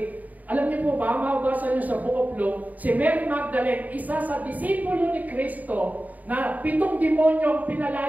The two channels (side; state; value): left; late; 0.077 ms